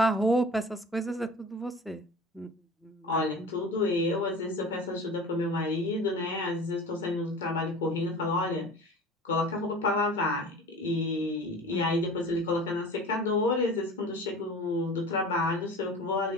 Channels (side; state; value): both; normal; correlation 0.39